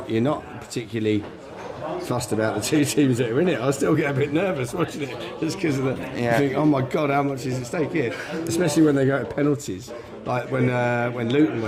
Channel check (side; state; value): both; identical; correlation 1.00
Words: particularly fussed about the two teams that are in it. I still get a bit nervous watching it just because of the. You think, oh my God, how much is at stake here? Especially when they go to penalties, like when Luton